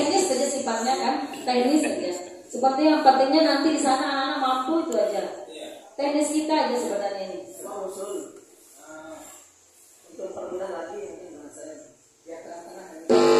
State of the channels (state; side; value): identical; both; correlation 1.00